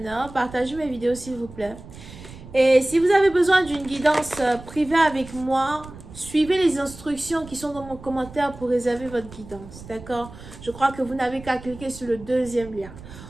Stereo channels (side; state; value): right; noise; rumble, 16 dB below the sound